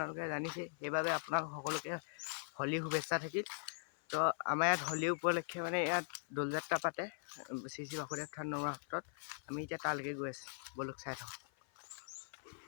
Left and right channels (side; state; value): right; silent; 51 dB below the other